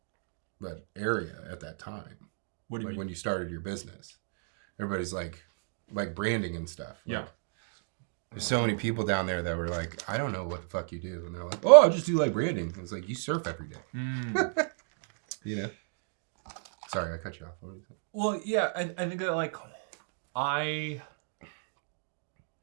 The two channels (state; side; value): silent; left; digital silence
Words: area at that time. What do you like mean? When you started your business, everybody's like branding and stuff. Like, yeah. There's so many people down there that were like, I don't know what the fuck you do. And they're like, oh, I just do like branding. It's like, you surf every day. You know? Sorry, I cut you off. Well, yeah, I think that like